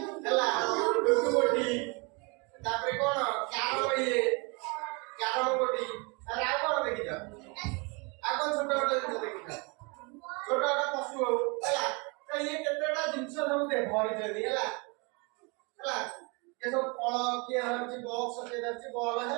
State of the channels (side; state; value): left; quieter; 30.9 dB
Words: ହେଲା ଡୁଡୁଗୋଟି ତାପରେ କଣ କ୍ୟାରମ ଗୋଟି ତାପରେ ଆଉ କଣ ଦେଖିଛ? ଆଉ କଣ ଛୋଟ ଛୋଟ ଜିନିଷ ଦେଖିଛ? ଛୋଟ ଛୋଟ ପଶୁ ହଉ ହେଲା ତ ଇଏ କେତେଟା ଜିନିଷ ସବୁ ଧରିଛନ୍ତି ହେଲା ହେଲା ये सब फल किए धरछि बॉक्स के धरछि बॉल